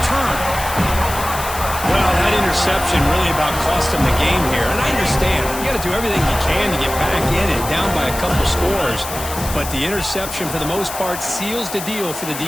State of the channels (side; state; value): left; noise; hiss, 9 dB below the sound